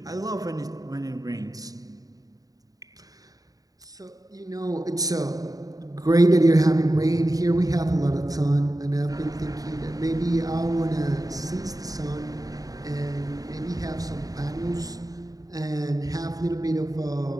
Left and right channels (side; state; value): left; late; 0.18 ms